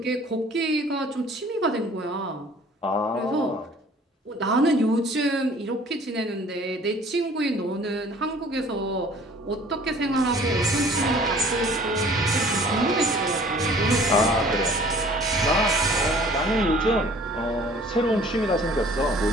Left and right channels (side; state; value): both; normal; correlation 0.52